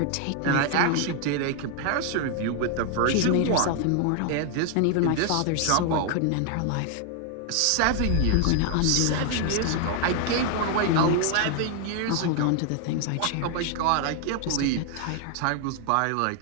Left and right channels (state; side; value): different; both; correlation 0.00